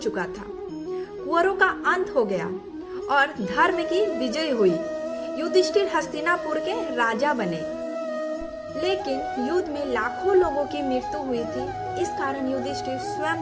था, कुंवरों का अंत हो गया और धर्म की विजय हुई। युधिष्ठिर हस्तिनापुर के राजा बने, लेकिन युद्ध में लाखों लोगों की मृत्यु हुई थी। इस कारण युधिष्ठिर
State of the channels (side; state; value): both; identical; correlation 1.00